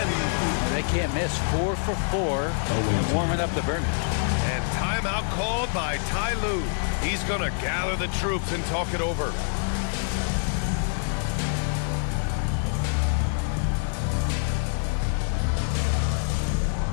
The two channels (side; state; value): right; silent; 61 dB below the other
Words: They can't miss. 4 for 4. And warming up the burn. And timeout called by Ty Lue. He's going to gather the troops and talk it over.